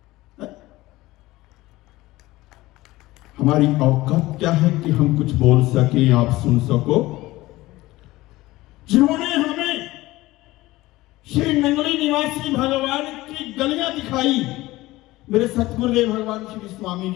हमारी औकात क्या है कि हम कुछ बोल सके, आप सुन सको? जिन्होंने हमें श्री नंगली निवासी भगवान की गलियां दिखाई, मेरे सतगुरुदेव भगवान श्री स्वामी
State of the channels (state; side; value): quieter; right; 18.4 dB